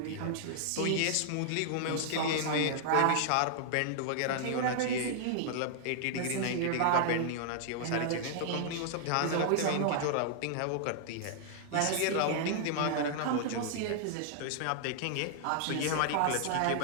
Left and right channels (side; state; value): both; different; correlation -0.01